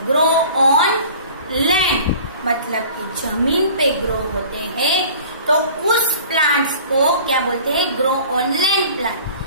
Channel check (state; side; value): inverted; both; correlation -0.45